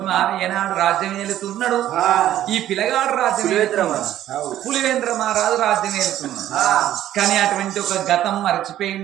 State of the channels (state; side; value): quieter; left; 12.5 dB